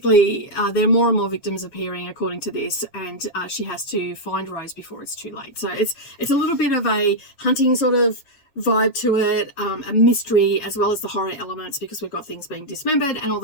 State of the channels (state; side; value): late; right; 7.4 ms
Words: there are more and more victims appearing according to this, and she has to find Rose before it's too late. So it's a little bit of a hunting sort of vibe to it, a mystery as well as the horror elements, because we've got things being dismembered and all